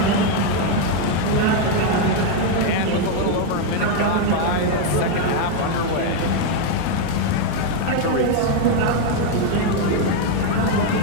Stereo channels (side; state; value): both; different; correlation 0.01